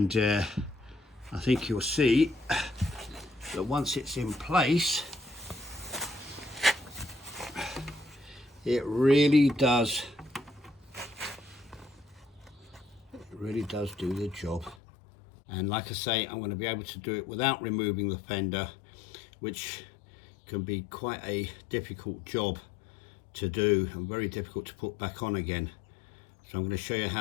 I think you'll see that once it's in place, it really does do the job. And like I say, I'm going to be able to do it without removing the fender, which can be quite a difficult job to do and very difficult to put back on again. So I'm going to show you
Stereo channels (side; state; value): right; drops out; at 14.8 s